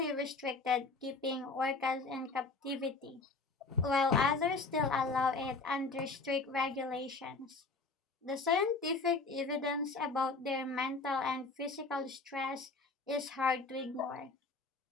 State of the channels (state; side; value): quieter; right; 3.8 dB